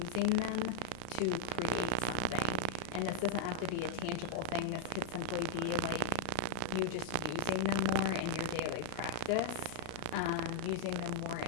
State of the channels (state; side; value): different; both; correlation -0.01